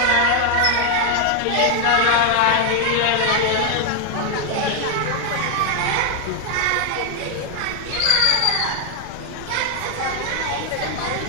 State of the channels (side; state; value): both; different; correlation 0.00